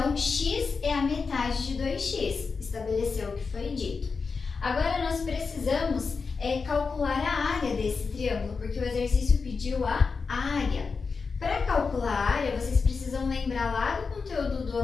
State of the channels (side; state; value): right; quieter; 4.9 dB